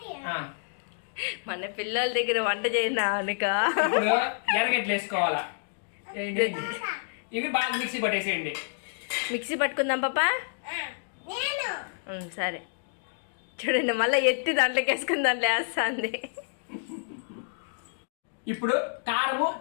మన పిల్లల దగ్గర వంట చేయనా అనుక ఎర్రగడ్డలు వేసుకోవాలా. ఇవి బాగా మిక్సీ పట్టేసేయండి. మిక్సీ పట్టుకుందాం పాపా. సరే చూడండి, మళ్ళీ ఎత్తి దాంట్లోకి వేసుకుని దాంట్లో వేస్తుంది. ఇప్పుడు కారము,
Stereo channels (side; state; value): right; silent; digital silence